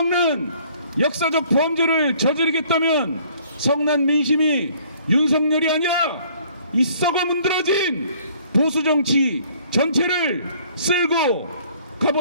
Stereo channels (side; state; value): both; inverted; correlation -0.58